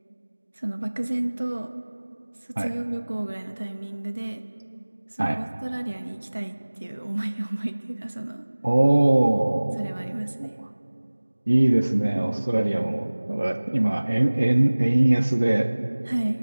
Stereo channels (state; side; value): inverted; both; correlation -1.00